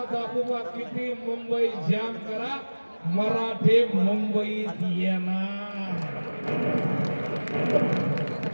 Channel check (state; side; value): inverted; both; correlation -1.00